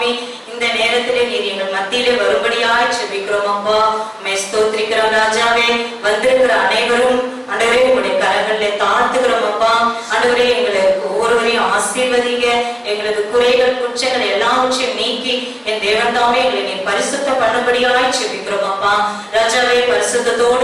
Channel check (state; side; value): identical; both; correlation 1.00